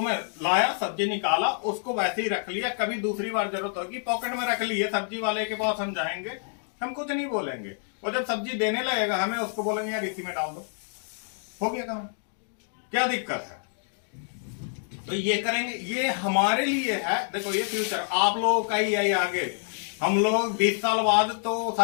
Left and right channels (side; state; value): right; silent; 60 dB below the other